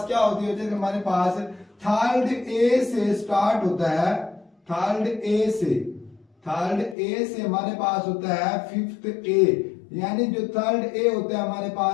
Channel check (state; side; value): drops out; right; at 7.0 s